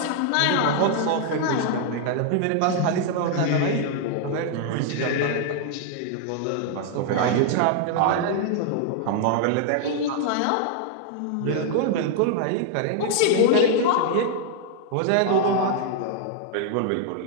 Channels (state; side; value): different; both; correlation 0.00